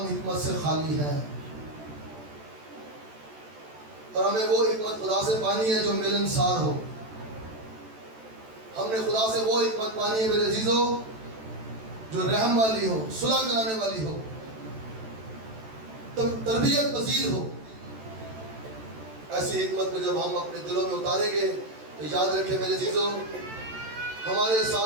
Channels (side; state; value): left; late; 14 ms